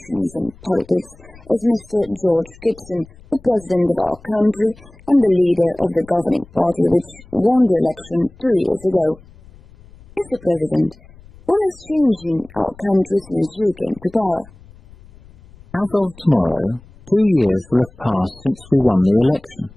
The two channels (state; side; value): noise; left; rumble, 24 dB below the sound